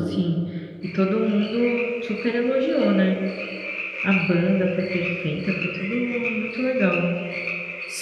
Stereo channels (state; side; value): identical; both; correlation 1.00